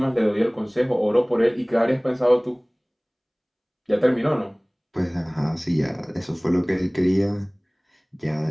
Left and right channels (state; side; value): identical; both; correlation 1.00